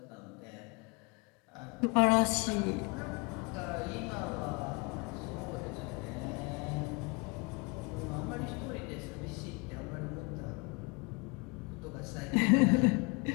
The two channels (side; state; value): right; quieter; 29.8 dB